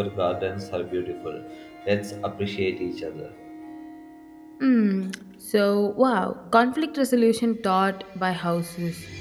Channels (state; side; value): identical; both; correlation 1.00